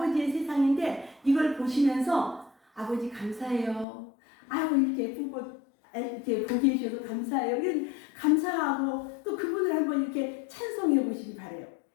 세상인데 이걸 보시면서 아버지 감사해요. 아유 이렇게 예쁜 꽃 이렇게 보게 해주셔서 감사해요. 이런 감사하고 또 그분을 한번 이렇게 찬송해 보시기 바래요.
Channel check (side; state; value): right; drops out; at 3.9 s